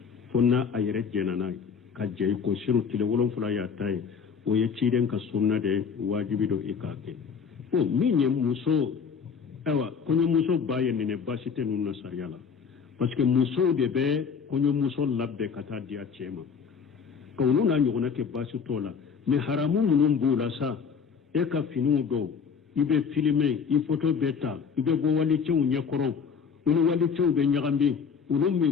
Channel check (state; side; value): quieter; right; 6.2 dB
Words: fo n'a a yɛrɛ jɛna n'a ye ka jɛ i ko siru tile 7 y'a ta ye o ye ciden ka sunna de wajibi do i k'a kɛ o min ye muso awa kɔɲɔmuso ba ye nɛnɛ baasi tɛ ninnu na sariya la parce que musow de bɛ kɔɲɔmuso labɛn ka taa di a cɛ ma ka olu n'a ɲɔgɔnna kɛ baasi t'o la mais haramu minnu b'u la sa e ka finiw dɔw i bɛ filime i photo bɛ ta i bɛ bɔ walicɛw ɲɛkɔrɔ olu walicɛw bɛ ɲagami olu